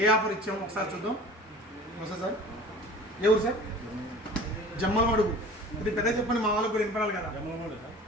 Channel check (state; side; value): normal; both; correlation 0.42